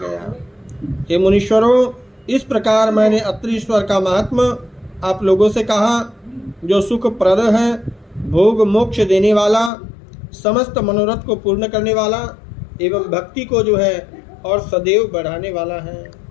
हे मुनीश्वरों, इस प्रकार मैंने अत्रीश्वर का महात्म्य आप लोगों से कहा, जो सुखप्रद है, भोग मोक्ष देने वाला, समस्त मनोरथ को पूर्ण करने वाला एवं भक्ति को जो है और सदैव बढ़ाने वाला है।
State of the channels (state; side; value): drops out; right; at 9.7 s